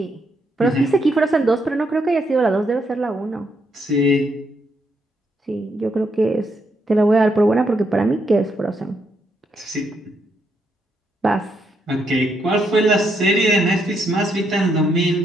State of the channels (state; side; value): normal; both; correlation 0.77